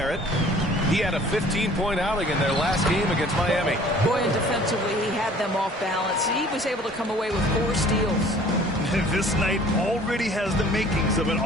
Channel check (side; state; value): both; normal; correlation 0.51